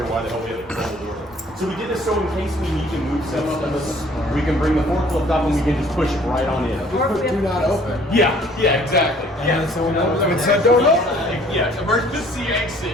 why the hell we had to close the door. So we did this so in case we need to move stuff, we can bring the forklift up and we can just push it right on in. Do not open. Yeah, exactly. Yeah, so we know when said don't open. Yeah, emergency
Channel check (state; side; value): normal; both; correlation 0.56